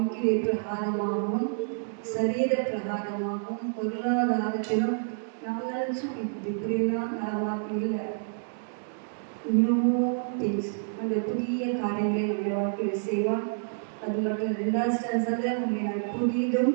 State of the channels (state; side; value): silent; left; digital silence